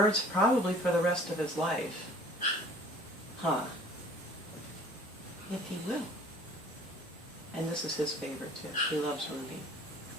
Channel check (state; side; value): normal; both; correlation 0.50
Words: probably for the rest of his life. Huh. If he will. And this is his favorite too. He loves Ruby.